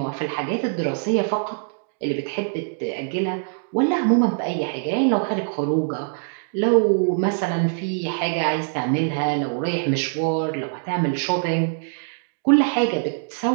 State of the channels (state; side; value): silent; left; digital silence